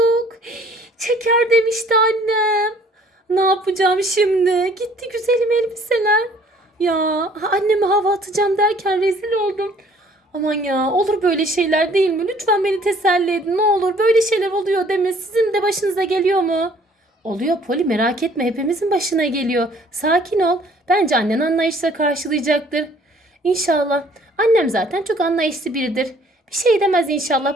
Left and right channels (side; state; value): both; normal; correlation 0.57